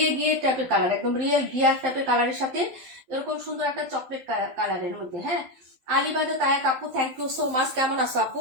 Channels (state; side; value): late; left; 12 ms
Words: গিয়ে টাইপের কালার, একদম রিয়েল গিয়ার টাইপের কালারের সাথে এরকম সুন্দর একটা চকলেট কালারের মধ্যে। হ্যাঁ, আলিবাদে তায়াক আপু থ্যাংক ইউ সো মাচ। কেমন আছো